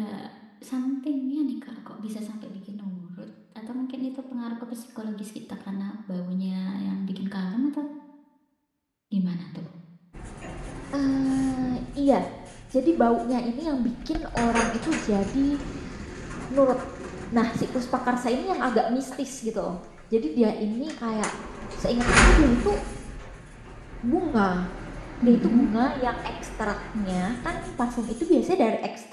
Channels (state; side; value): identical; both; correlation 1.00